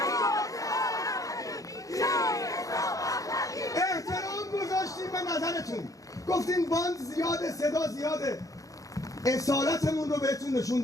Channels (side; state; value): right; late; 0.17 ms